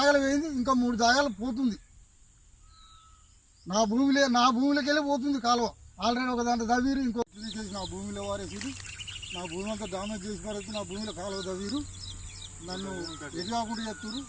వేయింది, ఇంకా 3 జాగాలు పోతుంది. నా భూమిలోకి వెళ్ళి పోతుంది కాలువ. ఆల్రెడీ ఒక దాంట్లో తవ్వీరు, ఇంకో తీసేసి నా భూమిలో వారేసి నా భూమి అంతా డామేజ్ చేసి పారేసి నా భూమిలో కాలువ తవ్వీరు. నన్ను ఎటు కాకుండా చెప్తున్నారు.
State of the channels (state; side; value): identical; both; correlation 1.00